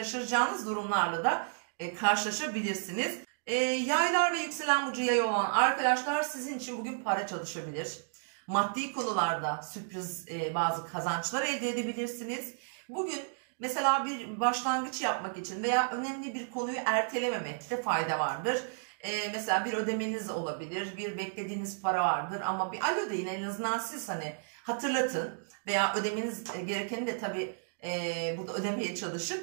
durumlarla da karşılaşabilirsiniz. Yaylar ve yükselen burcu yay olan arkadaşlar sizin için bugün para çalışabilir. Maddi konularda sürpriz bazı kazançlar elde edebilirsiniz. Bugün mesela bir başlangıç yapmak için veya önemli bir konuyu ertelememekte fayda vardır. Mesela bir ödemeniz olabilir, bir beklediğiniz para vardır ama bir alo deyin en azından siz hani hatırlatın veya ödemeniz gerekeni de tabii burada ödemeye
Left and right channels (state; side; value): silent; left; digital silence